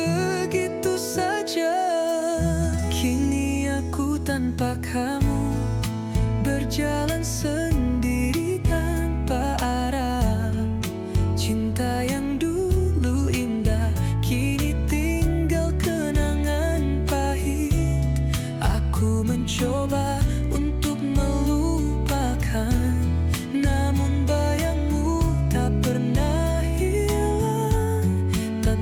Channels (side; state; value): both; identical; correlation 1.00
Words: saja. Kini aku tanpa kamu berjalan sendiri tanpa arah. Cinta yang dulu indah kini tinggal kenangan pahit. Aku mencoba untuk melupakan, namun bayangmu tak pernah hilang.